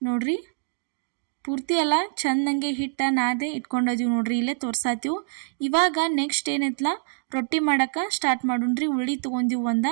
ನೋಡ್ರಿ. ಪೂರ್ತಿ ಎಲ್ಲ ಚೆಂದಂಗೆ ಹಿಟ್ಟು ನಾದೆ ಇಟ್ಕೊಂಡಿದ್ದೀವಿ ನೋಡ್ರಿ, ಇಲ್ಲೇ ತೋರ್ಸಾತೀವಿ. ಇವಾಗ ನೆಕ್ಸ್ಟ್ ಏನೈತಲ್ಲ ರೊಟ್ಟಿ ಮಾಡೋಕೆ ಸ್ಟಾರ್ಟ್ ಮಾಡೋಣ್ರಿ. ಉಳ್ಳಿ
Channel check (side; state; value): left; silent; digital silence